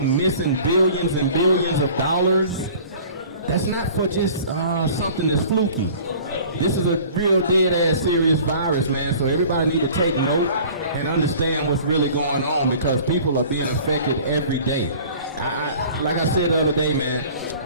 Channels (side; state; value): both; inverted; correlation -0.46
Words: billions and billions of dollars, that's not for just something that's fluky. This is a real dead-ass serious virus, man, so everybody need to take note and understand what's really going on because people are being affected every day. Like I said the other day, man,